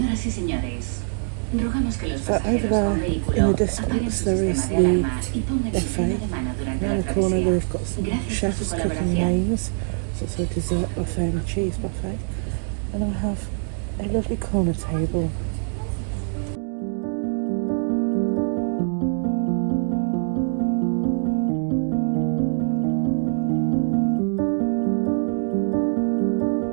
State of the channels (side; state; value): left; silent; 63 dB below the other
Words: So over there in the distance there is the buffet. Around the corner they've got some chefs cooking mains. It's also a dessert buffet and a cheese buffet. And we have a lovely corner table.